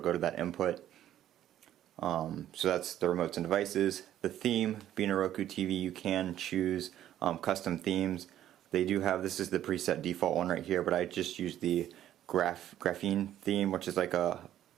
to that input. So that's the remotes and devices. The theme, being a Roku TV, you can choose custom themes. They do have, this is the preset default one right here, but I just use the graphene theme, which is like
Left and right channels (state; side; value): quieter; left; 11.9 dB